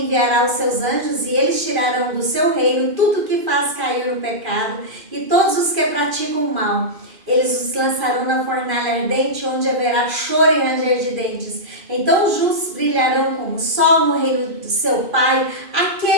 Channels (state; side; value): late; left; 2.5 ms